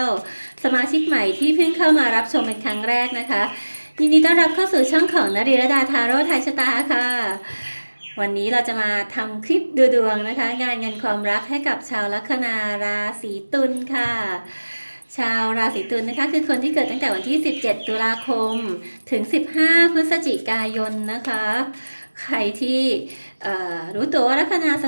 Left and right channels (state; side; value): inverted; both; correlation -1.00